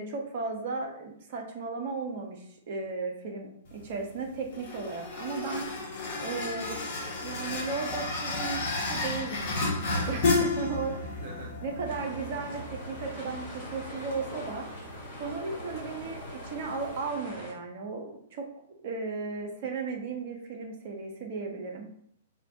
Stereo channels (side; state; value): both; inverted; correlation -0.37